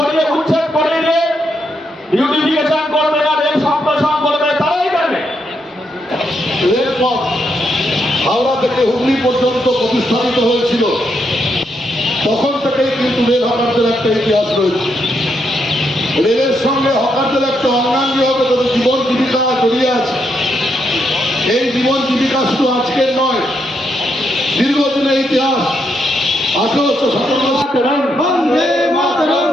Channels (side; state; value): both; normal; correlation 0.79